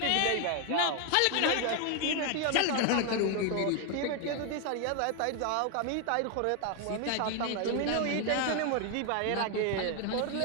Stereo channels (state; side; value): different; both; correlation 0.01